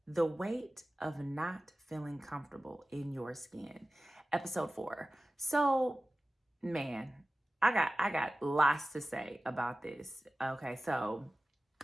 the weight of not feeling comfortable in your skin. Episode 4. So, man, I got lots to say about this. Okay, so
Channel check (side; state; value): both; normal; correlation 0.96